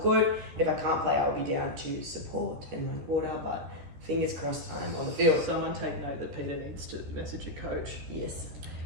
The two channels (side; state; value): left; late; 13 ms